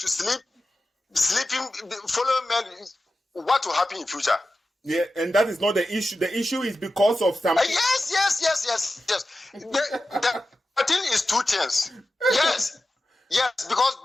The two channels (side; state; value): both; normal; correlation 0.93